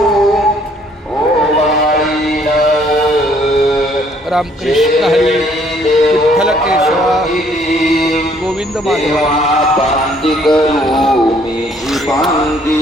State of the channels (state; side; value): normal; both; correlation 0.63